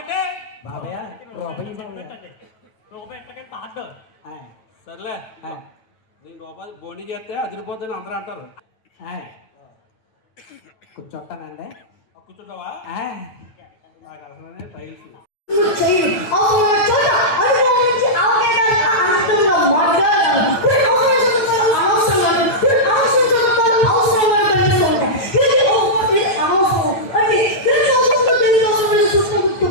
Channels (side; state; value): right; late; 9.0 ms